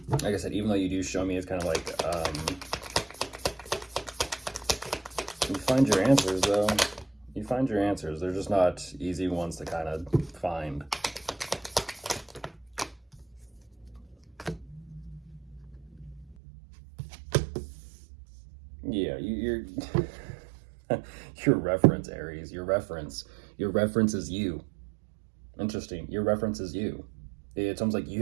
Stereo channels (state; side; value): drops out; left; at 16.4 s